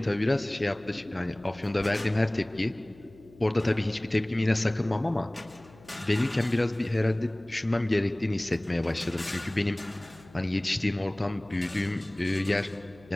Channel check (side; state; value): left; noise; hum, 24 dB below the sound